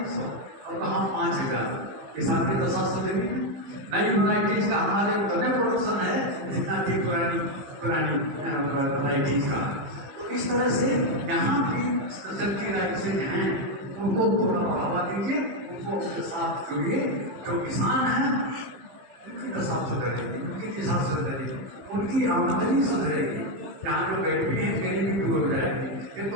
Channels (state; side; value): late; left; 15 ms